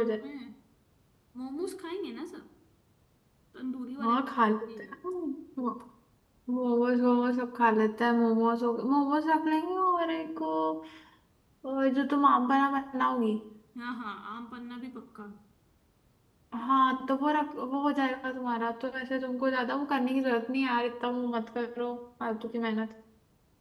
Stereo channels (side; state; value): both; identical; correlation 1.00